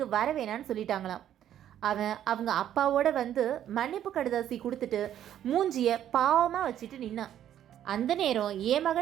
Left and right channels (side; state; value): left; quieter; 10.9 dB